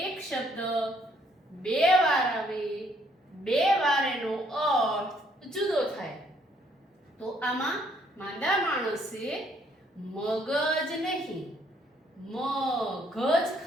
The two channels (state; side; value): normal; both; correlation 0.67